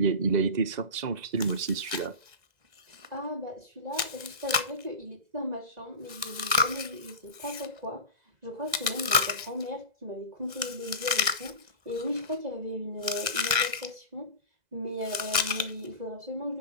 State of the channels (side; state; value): left; late; 2.0 ms